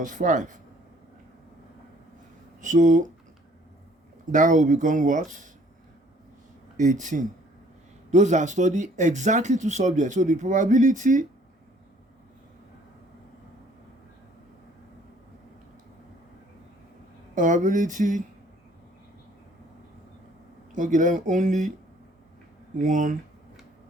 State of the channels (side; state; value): both; normal; correlation 0.59